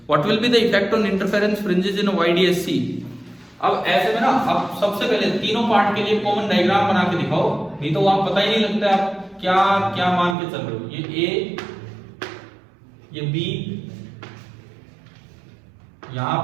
What will be the effect on interference fringes in YDSC? अब ऐसे में ना आप सबसे पहले तीनों पार्ट के लिए कॉमन डायग्राम बना के दिखाओ, नहीं तो वहां पता ही नहीं लगता है आप क्या क्या मान के चल रहे हो। ये ए, ये बी, यहां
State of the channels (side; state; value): left; drops out; at 10.4 s